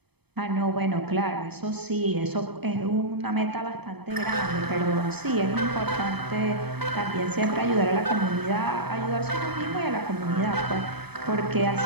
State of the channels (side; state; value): left; late; 0.97 ms